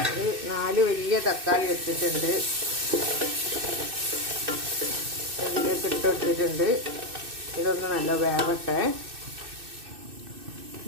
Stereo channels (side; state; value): left; late; 2.6 ms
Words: ഒരു 4 വലിയ തക്കാളി എടുത്തിട്ടുണ്ട്. അതിലേക്ക് ഇട്ട് കൊടുത്തിട്ടുണ്ട്. ഇതൊന്ന് നല്ല വേവട്ടെ.